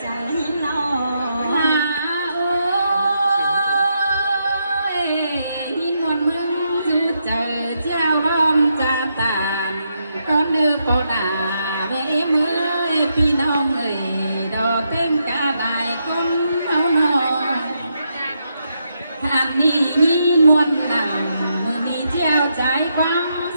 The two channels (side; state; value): both; inverted; correlation -0.81